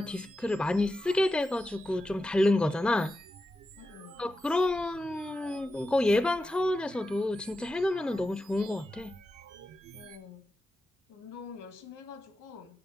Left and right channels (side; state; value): both; normal; correlation 0.91